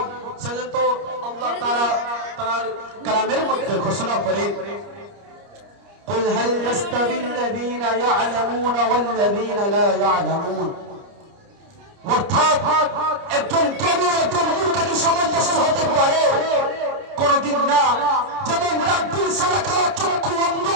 সেজন্য তো আল্লাহ তাআলা তার কালামের মধ্যে ঘোষণা করেন, قل هل يستوي الذين يعلمون والذين لا يعلمون। অর্থাৎ একজন জ্ঞানী একজন মূর্খের সামঞ্জস্য হতে পারে? কোনদিন না। যেমন রাত্রির সাদা কালো চক্ষু অন্ধ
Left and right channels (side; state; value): left; late; 30 ms